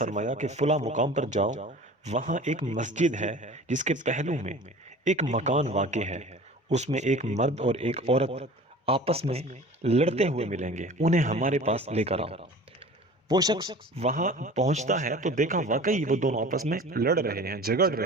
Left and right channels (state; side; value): normal; both; correlation 0.41